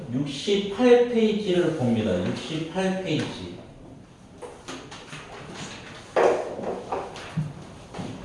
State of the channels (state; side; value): identical; both; correlation 1.00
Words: 68페이지를 봅니다. 68페이지.